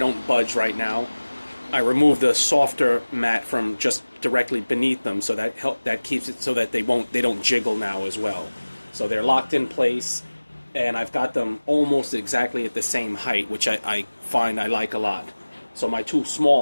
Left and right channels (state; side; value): inverted; both; correlation -1.00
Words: budge right now. I removed the softer mat from just directly beneath them, so that keeps it so that they don't jiggle now as well. So they're locked in place, and I've got them almost exactly at the same height, which I find I like a lot. So my two